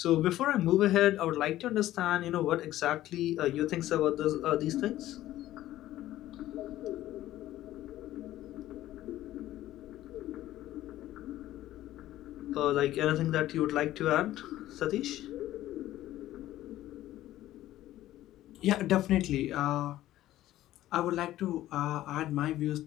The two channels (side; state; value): right; quieter; 14.3 dB